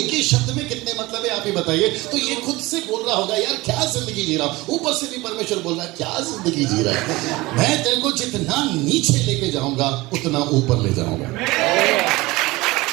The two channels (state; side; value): quieter; left; 20.9 dB